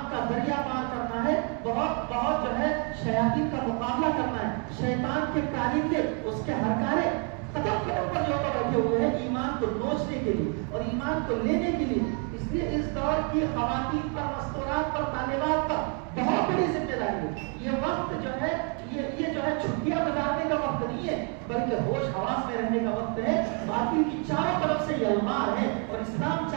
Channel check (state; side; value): quieter; left; 38.8 dB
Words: کا دریا پار کرنا ہے. بہت بہت جو ہے شیاطین کا مقابلہ کرنا ہے. شیطان کے کارندے اس کے ہرکارے قدم قدم پر جو بیٹھے ہوئے ہیں ایمان کو نوچنے کے لیے اور ایمان کو لینے کے لیے. اس لیے اس دور کی خواتین پر، مستورات پر، طالبات پر بہت بڑی ذمہ داری ہے. یہ وقت جو ہے یہ جو ہے چھٹیاں گزارنے کا وقت نہیں ہے، بلکہ ہوش حواس میں رہنے کا وقت ہے. باطل کی چاروں طرف سے یہ المار ہے اور اسلام